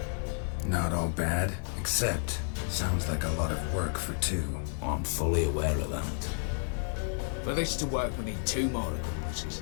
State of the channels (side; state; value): right; silent; 57 dB below the other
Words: Not all bad, except sounds like a lot of work for two. I'm fully aware of that. For this to work, we need two more accomplices.